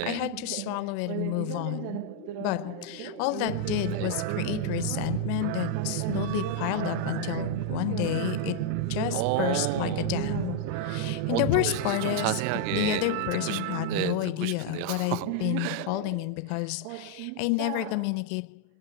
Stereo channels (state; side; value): different; both; correlation 0.00